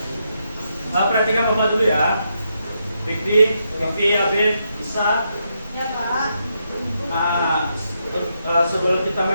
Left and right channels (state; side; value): inverted; both; correlation -0.81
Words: Perhatikan Bapak dulu ya. Fikri, Habib, Isa. Ya, Pak. Sebelum kita